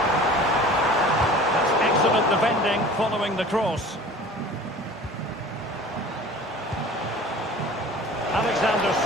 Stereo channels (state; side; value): normal; both; correlation 0.43